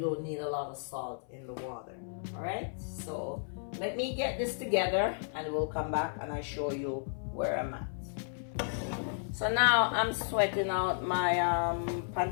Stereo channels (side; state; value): right; silent; 56 dB below the other